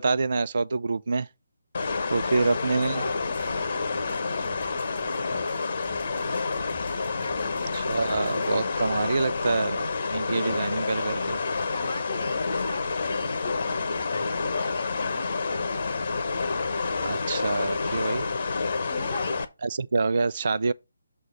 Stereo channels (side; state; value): both; inverted; correlation -0.88